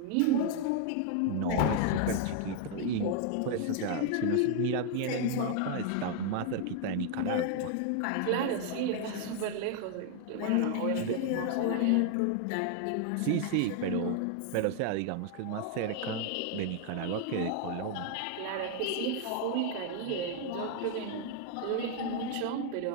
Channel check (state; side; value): different; both; correlation 0.00